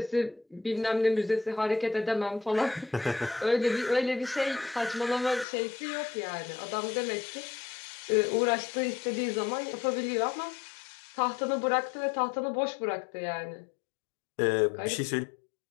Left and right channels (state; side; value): drops out; right; at 5.5 s